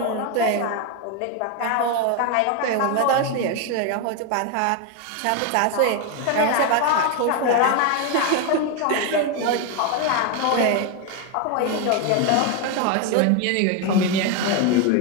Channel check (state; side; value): different; both; correlation 0.01